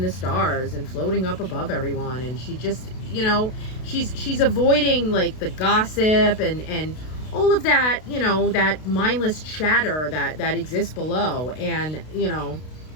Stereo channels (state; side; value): late; right; 32 ms